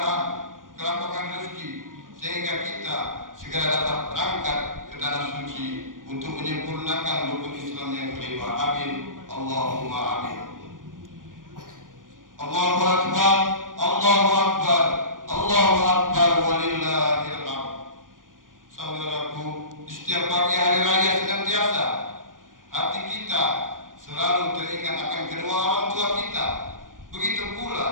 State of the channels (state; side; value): late; left; 0.89 ms